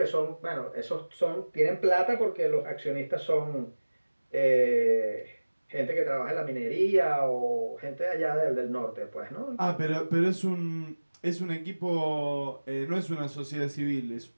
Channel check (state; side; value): inverted; both; correlation -1.00